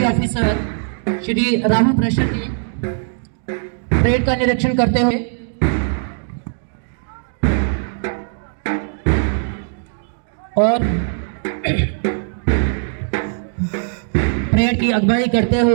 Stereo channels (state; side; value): silent; left; digital silence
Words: officer Shri Rahul Prashar ji parade का निरीक्षण करते हुए और परेड की अगुवाई करते